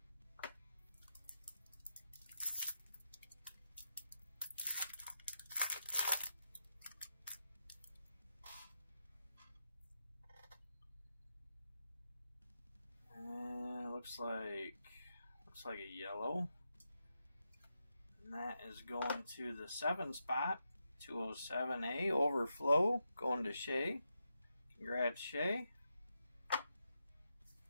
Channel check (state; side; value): inverted; both; correlation -0.86